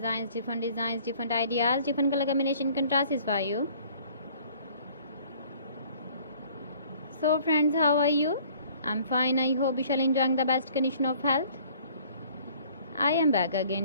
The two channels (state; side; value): inverted; both; correlation -0.54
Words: different ideas, different color combination contrasts for you. So friends, how are you? I'm fine. I hope you shall enjoying the best condition of health. I am back